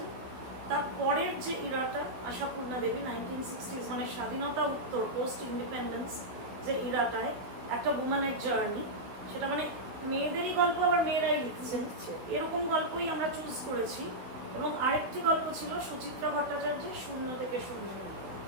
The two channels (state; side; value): late; left; 16 ms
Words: তারপরের যে ইরাটা, আশাপূর্ণা দেবী 1960s, মানে স্বাধীনতা উত্তর, পোস্ট ইন্ডিপেন্ডেন্স যে ইরাটায় একটা উম্যানের জার্নি, সেটা মানে মেয়েদেরই গল্প, আবার মেয়েরাই লিখছেন, এরকম গল্পই আমরা চুজ করেছি। এবং আরেকটি গল্প ছিল সুচিত্রা ভট্টাচার্যের শূন্য থেকে শূন্য,